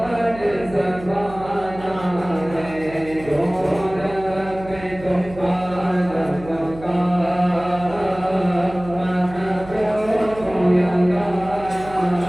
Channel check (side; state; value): right; noise; hum, 16 dB below the sound